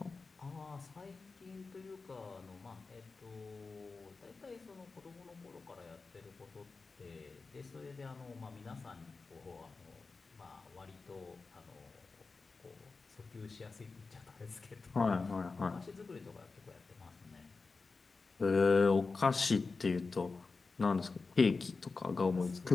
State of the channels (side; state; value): right; quieter; 4.2 dB